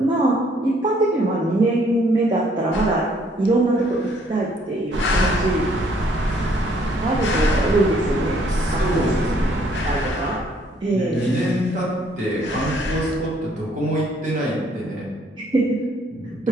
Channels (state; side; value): normal; both; correlation 0.65